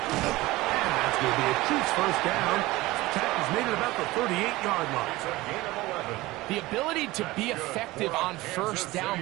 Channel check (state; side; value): quieter; left; 19.4 dB